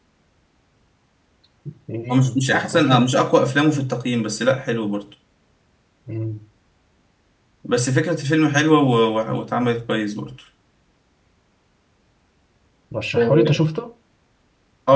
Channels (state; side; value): identical; both; correlation 1.00